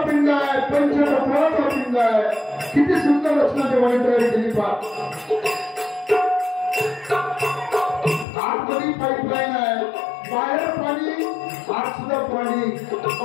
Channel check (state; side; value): drops out; right; at 8.2 s